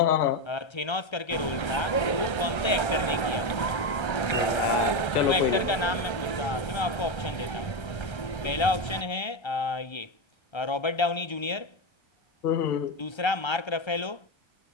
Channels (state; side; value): late; right; 1.3 ms